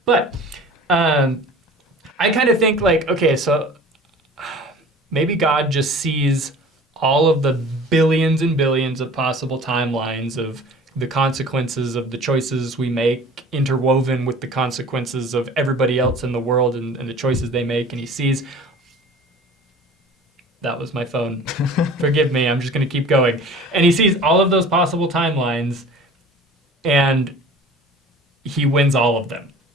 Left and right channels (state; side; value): normal; both; correlation 0.43